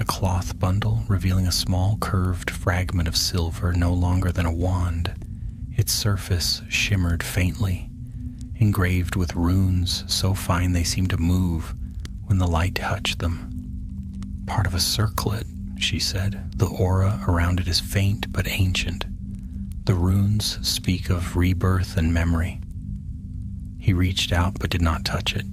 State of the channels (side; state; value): both; identical; correlation 1.00